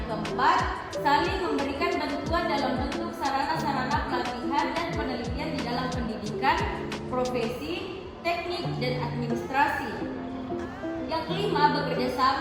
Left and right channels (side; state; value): both; identical; correlation 1.00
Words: keempat, saling memberikan bantuan dalam bentuk sarana-sarana pelatihan dan penelitian di dalam pendidikan, profesi, teknik, dan administrasi. Yang kelima, bekerja